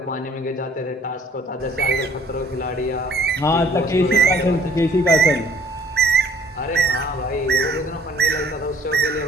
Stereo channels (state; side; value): normal; both; correlation 0.58